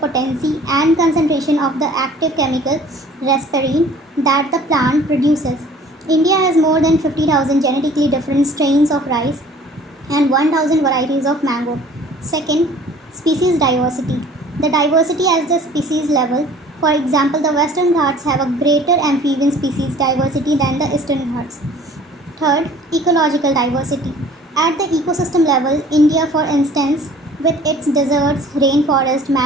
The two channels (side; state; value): both; normal; correlation 0.50